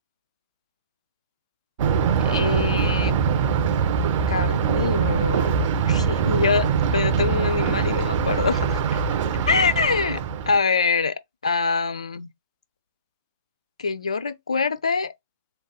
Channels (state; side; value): inverted; both; correlation -0.45